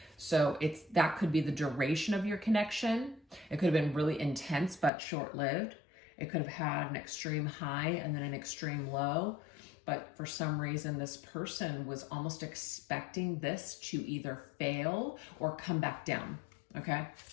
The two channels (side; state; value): right; drops out; at 4.9 s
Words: So that could be the duration of your connection. It could have been really intense, but short-lived. It could have had an extreme high and then an extreme low. But for some reason, this person was almost expecting this to either fail or come back down, okay?